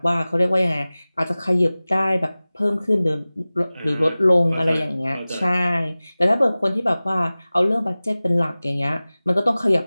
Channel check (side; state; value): both; inverted; correlation -0.98